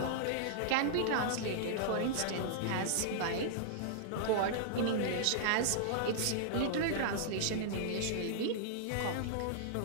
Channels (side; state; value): both; different; correlation -0.01